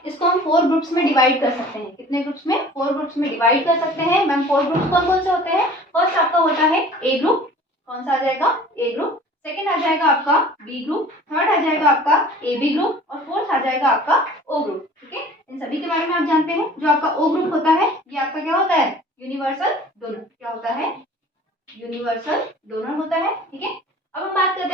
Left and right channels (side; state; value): both; normal; correlation 0.46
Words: इसको हम 4 ग्रुप्स में डिवाइड कर सकते हैं। कितने ग्रुप्स में? 4 ग्रुप्स में डिवाइड कर सकते हैं। मैम 4 ग्रुप्स कौन कौन से होते हैं? फर्स्ट आपका होता है ए ग्रुप। कौन सा आ जाएगा? ए ग्रुप। सेकंड आ जाएगा आपका बी ग्रुप, थर्ड आ जाएगा आपका ए बी ग्रुप, और फोर्थ आ जाएगा आपका ओ ग्रुप। ठीक है, इन सभी के बारे में आप जानते हैं। जो आपका ओ ग्रुप होता है ये आपका क्या होता है? Universal donor. क्या होता है? यूनिवर्सल डोनर होता है। ठीक है, अब हम बात करते